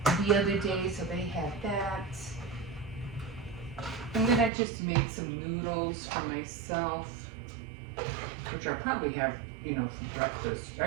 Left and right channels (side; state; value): left; drops out; at 4.5 s